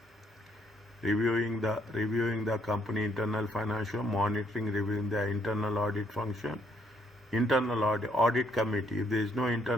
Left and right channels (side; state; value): both; normal; correlation 0.71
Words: reviewing the company internal financial, monitoring, reviewing the internal audit function, internal audit committee. If there is no